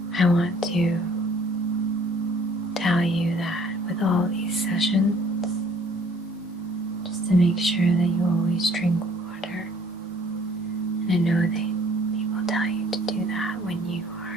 I want to tell you that with all these sessions, just to make sure that you always drink water. And I know that people tell you to do that when you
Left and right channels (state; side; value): normal; both; correlation 0.58